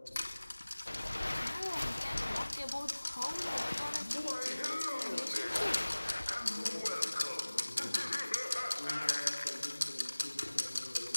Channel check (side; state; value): both; inverted; correlation -1.00